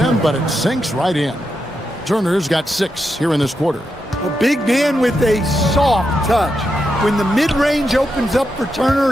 but it sinks right in. Turner's got 6 here in this quarter. A big man with a soft touch. When the mid-range opens up for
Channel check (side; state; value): both; normal; correlation 0.85